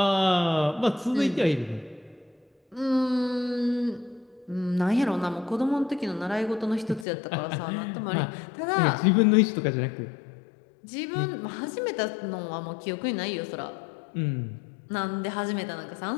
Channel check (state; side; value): drops out; right; at 7.1 s